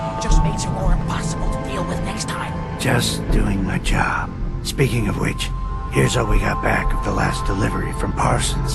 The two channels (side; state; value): both; identical; correlation 1.00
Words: It just makes her more impossible to deal with next time. Just doing my job. Speaking of which, here's all we got back of the last delivery from